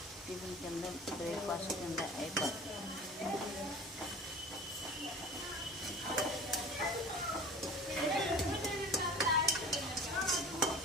టిఫిన్ కింద, బ్రేక్ఫాస్ట్ కింద అయిపోతుంది.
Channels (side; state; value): both; normal; correlation 0.40